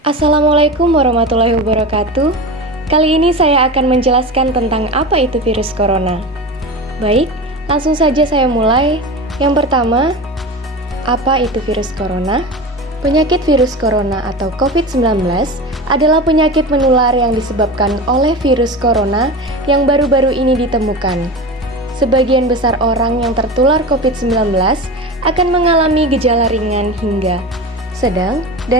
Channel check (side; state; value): both; normal; correlation 0.27